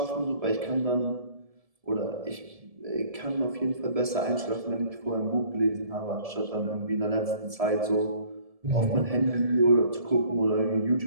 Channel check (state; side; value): late; left; 1.7 ms